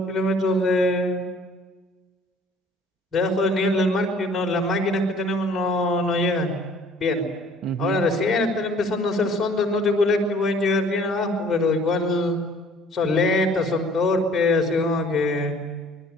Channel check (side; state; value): both; normal; correlation 0.54